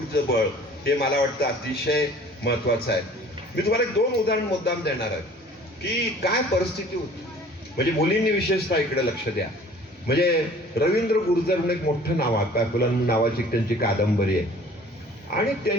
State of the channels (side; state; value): both; normal; correlation 0.50